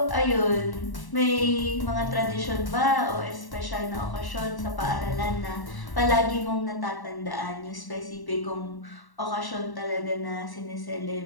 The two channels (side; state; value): right; late; 1.1 ms